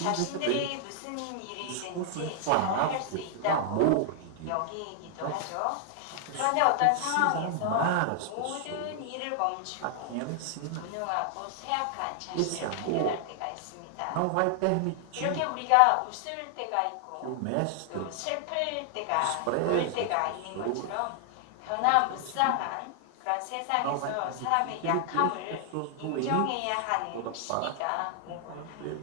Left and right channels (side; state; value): both; different; correlation 0.00